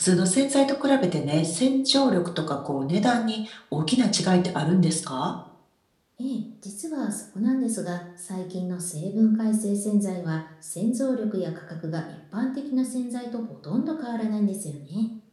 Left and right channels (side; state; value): both; identical; correlation 1.00